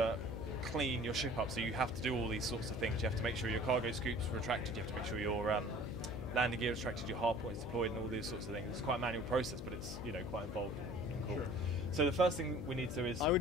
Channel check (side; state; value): left; noise; hum, 7 dB below the sound